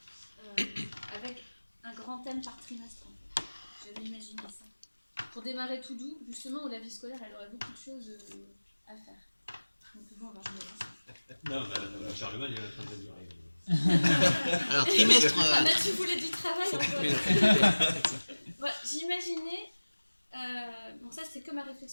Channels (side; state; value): both; inverted; correlation -1.00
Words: avec un grand thème par trimestre. En fait. J'avais imaginé ça. Pour démarrer tout doux, justement, où la vie scolaire, elle aurait beaucoup de choses à faire. Donc bon, alors je me lance. Non, la charge il est en train de dire. Alors, trimestre. Ah bah, tu voulais du travail encore. Voilà, j'imaginais. Bon, ça, c'est que ma